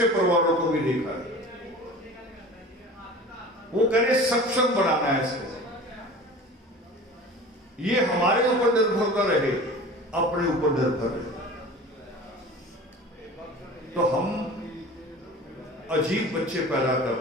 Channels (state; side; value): normal; both; correlation 0.39